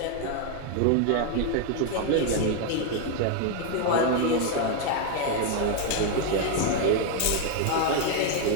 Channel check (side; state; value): both; different; correlation 0.01